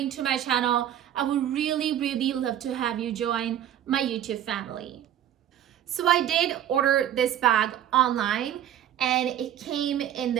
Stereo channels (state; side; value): quieter; left; 11.1 dB